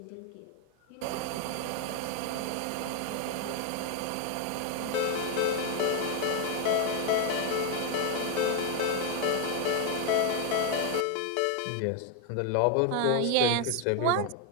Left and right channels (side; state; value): both; different; correlation 0.00